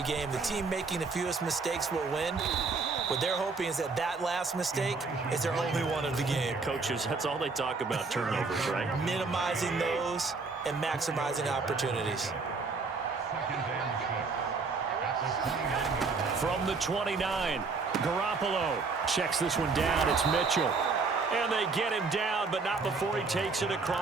game, the team making the fewest mistakes will win. What they're hoping is that that last mistake is their only one of the game. Coaches, that's all they talk about, turnovers, right? Minimizing those and maximizing opportunities. From the 29, Garoppolo checks this one down. It's Mitchell. And they get him down, but not before he takes it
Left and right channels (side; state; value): left; quieter; 4.3 dB